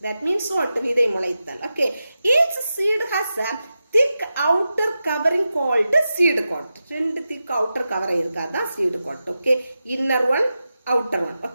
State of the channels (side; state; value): both; inverted; correlation -0.91